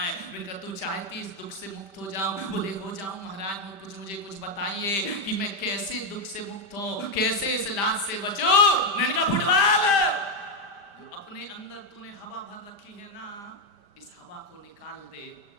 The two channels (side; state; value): right; late; 5.1 ms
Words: है। मैंने कहा तू चाहती इस दुख से मुक्त हो जाऊं? बोले हो जाऊं महाराज, मुझे कुछ बताइए कि मैं कैसे दुख से मुक्त हूं, कैसे इस लात से बचूं। मैंने कहा फुटबॉल, जो अपने अंदर तूने हवा भर रखी है ना, इस हवा को निकाल दे।